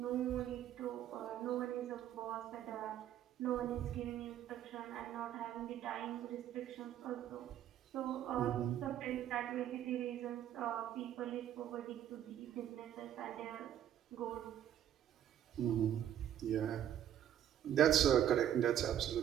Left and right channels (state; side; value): quieter; left; 10.7 dB